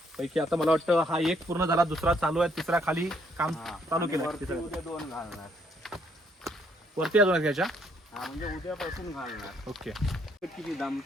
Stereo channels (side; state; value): both; normal; correlation 0.69